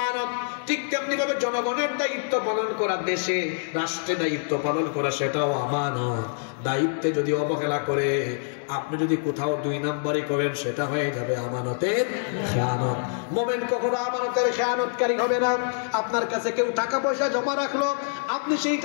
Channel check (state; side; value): silent; right; digital silence